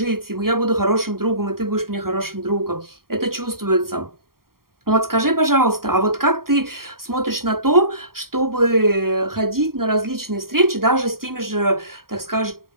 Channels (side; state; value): left; late; 0.93 ms